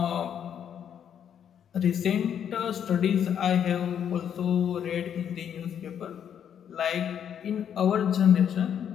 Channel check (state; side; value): quieter; right; 8.8 dB